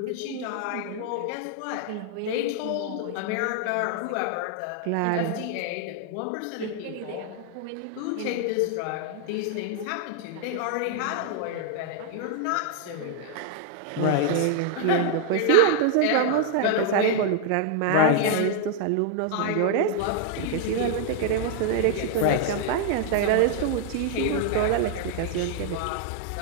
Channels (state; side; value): different; both; correlation 0.00